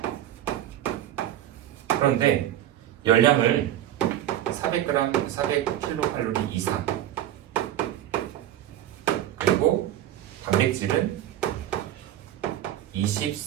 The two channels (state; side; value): quieter; left; 12.2 dB